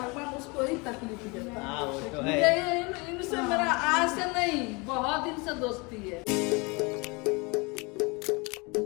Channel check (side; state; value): right; quieter; 28.2 dB